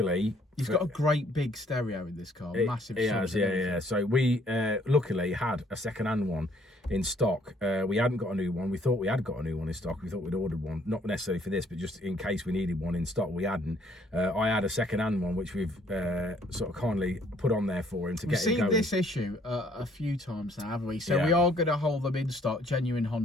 He's got a great big stereo in this car, massive. He has, yeah. So we luckily had a second-hand one in stock. We hadn't got a new one. We thought we had got a new one in stock. We thought we'd ordered one, not necessarily for this, but just in case we needed one in stock. We hadn't. I had a second-hand one, which we've sort of kindly put on there for him to get it going. We've seen this issue a few times now, haven't we? So Yeah. we are going to hold them in stock, genuine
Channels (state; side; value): normal; both; correlation 0.63